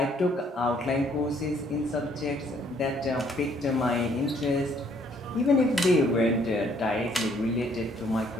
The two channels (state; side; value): normal; both; correlation 0.65